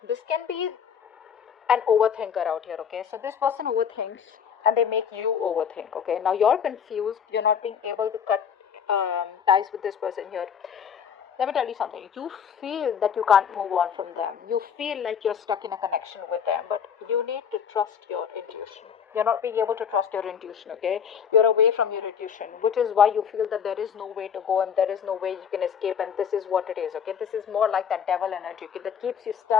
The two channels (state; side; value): quieter; right; 7.6 dB